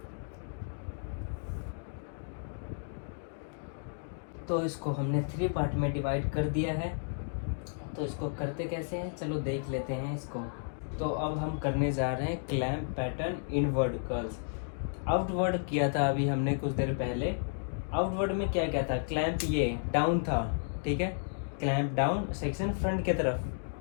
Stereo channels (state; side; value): silent; right; digital silence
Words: तो इसको हमने 3 पार्ट में डिवाइड कर दिया है। तो इसको करते कैसे हैं, चलो देख लेते हैं इसको। तो अब हम करने जा रहे हैं clamp pattern inward curls. Outward किया था अभी हमने कुछ देर पहले। आउटवर्ड में क्या क्या था, क्लैंप ये डाउन था, ठीक है, क्लैंप डाउन सेक्शन फ्रंट के तरफ,